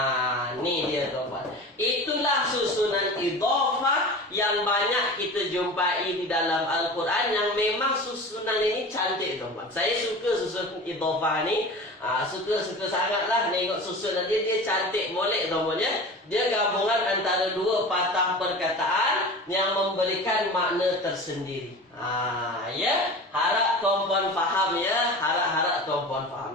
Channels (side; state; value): both; normal; correlation 0.35